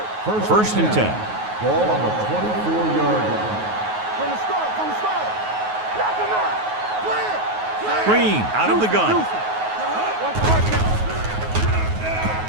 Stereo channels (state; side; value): late; left; 9.4 ms